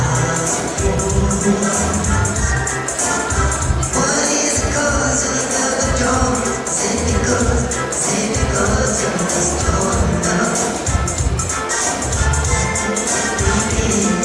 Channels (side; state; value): both; identical; correlation 1.00